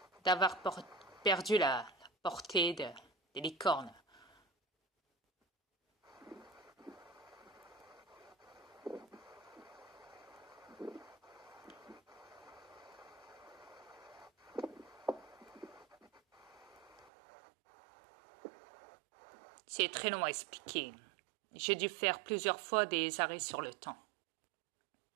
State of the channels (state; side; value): drops out; left; at 17.1 s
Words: d'avoir perdu la portée des licornes. C'est très long à expliquer. J'ai dû faire plusieurs fois des arrêts sur le temps.